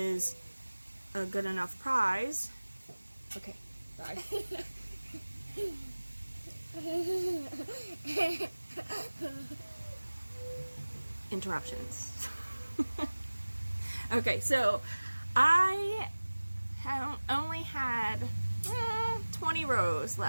a good enough prize. Okay, bye. Interruptions. Okay, so I only had 20 rows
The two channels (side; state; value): both; inverted; correlation -1.00